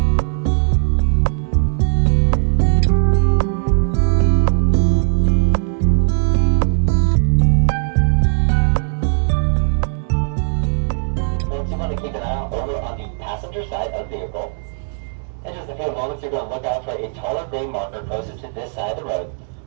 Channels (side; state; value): left; silent; digital silence